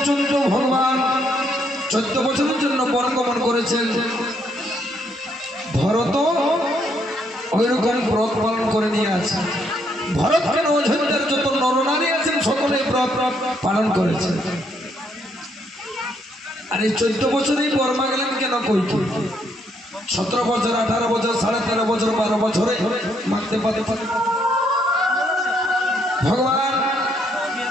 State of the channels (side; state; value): both; normal; correlation 0.72